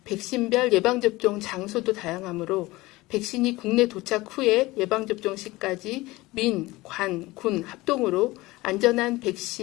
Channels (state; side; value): quieter; right; 20.2 dB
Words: 백신별 예방접종 장소도 다양하므로 백신이 국내 도착 후에 예방접종 시까지 민, 관, 군 합동으로 안전한